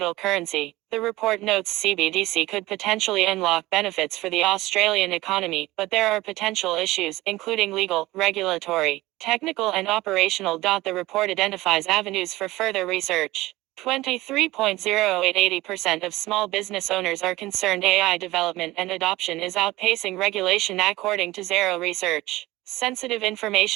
currency. The report notes CBDC could potentially unlock benefits for the Australian economy, but there are potential issues, including legal, regulatory, technical and operational. The report identifies avenues for further research. 23.08 80% of small business owners are concerned AI development and adoption is outpacing regulation, according to Zero Research. Sensitive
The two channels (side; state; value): left; quieter; 18.4 dB